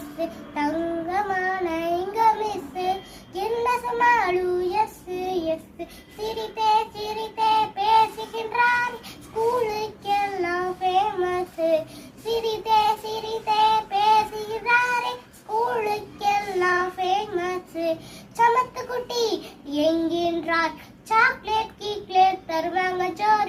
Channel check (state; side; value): identical; both; correlation 1.00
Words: தங்கமான எங்க miss என்ன சமாளு எஸ் எஸ் சிரித்தே சிரித்தே பேசுகின்றார் ஸ்கூலுக்கெல்லாம் ஃபேமஸ் சிரித்தே சிரித்தே பேசுகிறாரே ஸ்கூலுக்கெல்லாம் ஃபேமஸ் சமத்து குட்டி என்கின்றார் சாக்லேட் கீக்லேட் தருவாங்க